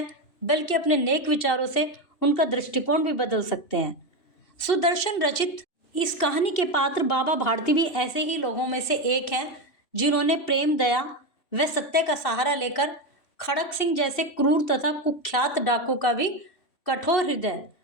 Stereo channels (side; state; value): right; late; 2.7 ms